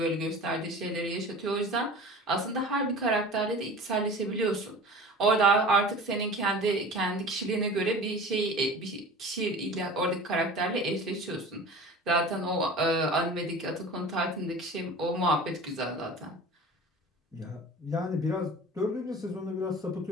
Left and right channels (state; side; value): normal; both; correlation 0.38